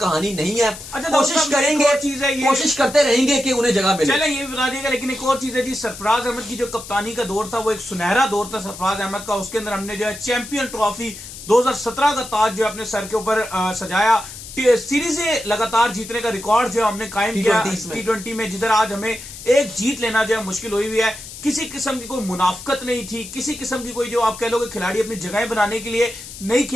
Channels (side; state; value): left; noise; hiss, 13 dB below the sound